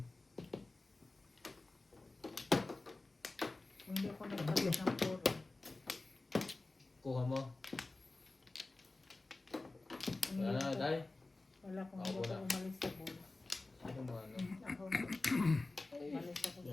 Kung hindi ako nagpalit ng puro. Kuha mo. Kung Wala hindi na, ako- Day. Wala kung Ako hindi ako na. umalis sa bulls. Ano mo ano? Ako. Umalis ako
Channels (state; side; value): quieter; right; 3.2 dB